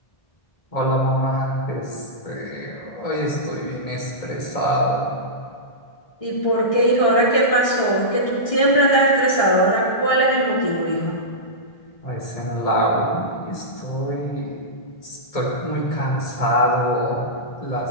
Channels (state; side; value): late; right; 1.6 ms